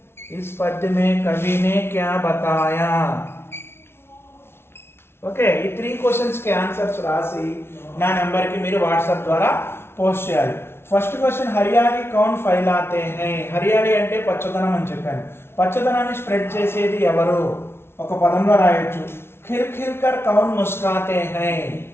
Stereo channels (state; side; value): late; right; 0.12 ms